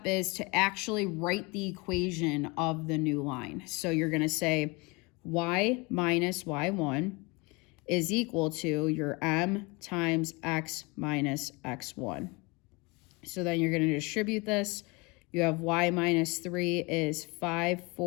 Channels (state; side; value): quieter; right; 26.9 dB